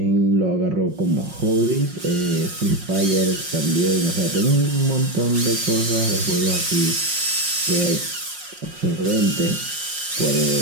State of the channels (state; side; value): late; left; 5.5 ms